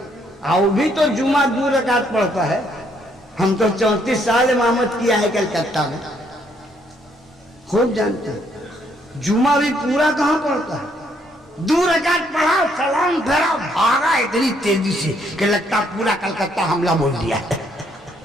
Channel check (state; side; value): normal; both; correlation 0.70